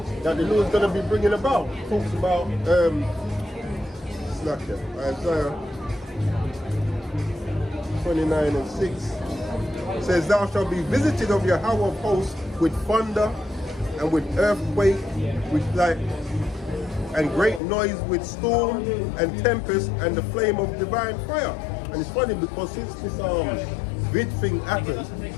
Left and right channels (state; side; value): drops out; right; at 17.6 s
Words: that the Lord's going to be bringing about. It talks about, Isaiah 29 and 6. It says, thou shalt be visited of Yahweh of hosts with thunder and with earthquake, with light, and great noise with storm and tempest and the flame of divine fire. And it's funny because since this vid thing happened,